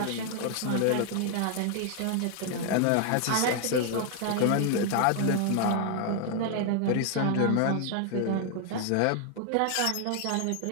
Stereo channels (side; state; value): both; different; correlation 0.00